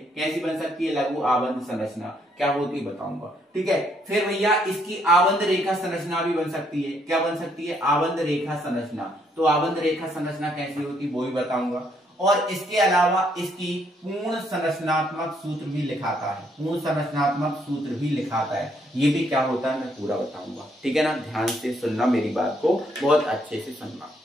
कैसी बन सकती है, लघु आबंध संरचना। क्या होती है बताऊंगा, ठीक है। फिर भैया इसकी आबंध रेखा संरचना भी बन सकती है। क्या बन सकती है, आबंध रेखा संरचना। तो आबंध रेखा संरचना कैसी होती है वो भी बताऊंगा। और इसके अलावा इसकी पूर्ण संरचनात्मक सूत्र भी लिखाता है, पूर्ण संरचनात्मक सूत्र भी लिखाता है। ये भी क्या होता है मैं पूरा बताऊंगा, ठीक है ना। ध्यान से सुनना, मेरी बात को बहुत अच्छे से सुनना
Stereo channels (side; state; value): both; normal; correlation 0.70